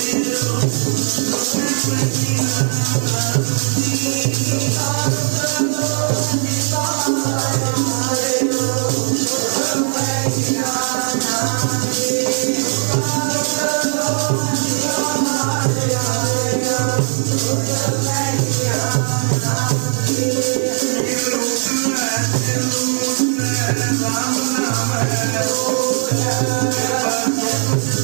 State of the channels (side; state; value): left; silent; digital silence